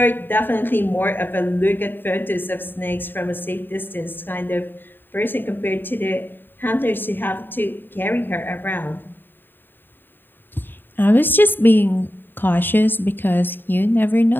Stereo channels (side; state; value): right; late; 0.095 ms